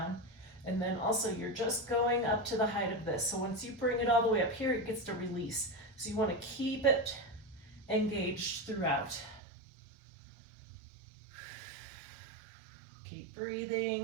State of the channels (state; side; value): drops out; left; at 9.4 s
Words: And then also you're just going up to the height of this. So once you bring it all the way up here, it gets to release. So you want to keep it engaged throughout. Keep